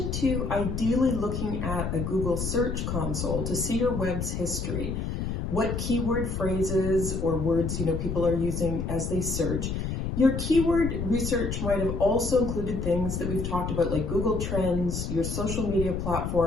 to ideally looking at a Google Search Console to see your web's history, what keyword phrases or words people are using as they search, your keyword research might have also included things that we've talked about like Google Trends, your social media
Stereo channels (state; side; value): noise; left; rumble, 3 dB below the sound